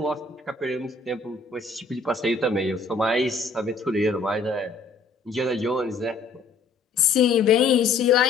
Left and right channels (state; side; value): quieter; right; 4.1 dB